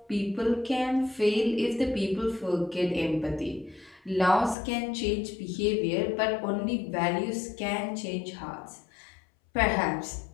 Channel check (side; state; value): right; drops out; at 4.5 s